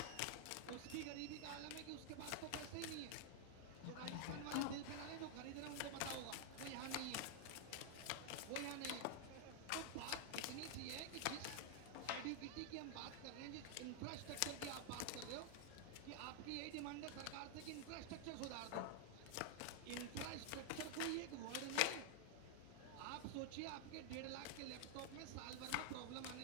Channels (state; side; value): different; both; correlation 0.00